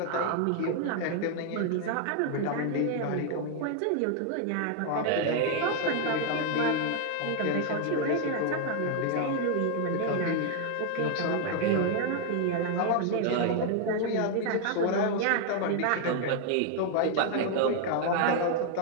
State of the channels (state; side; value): different; both; correlation 0.00